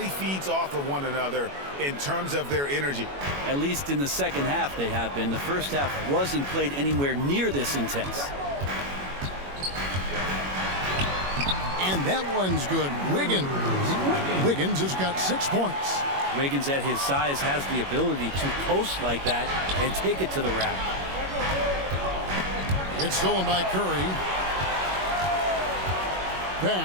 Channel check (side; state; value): left; late; 21 ms